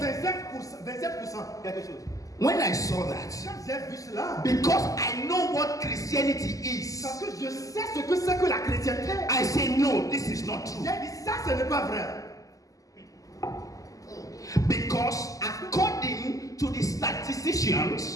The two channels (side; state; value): right; late; 0.17 ms